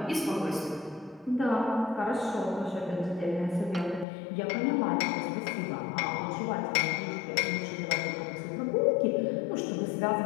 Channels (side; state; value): right; drops out; at 4.0 s